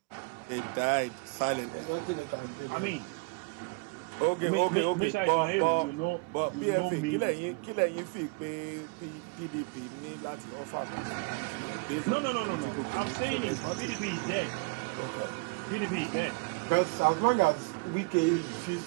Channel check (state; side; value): quieter; left; 30.3 dB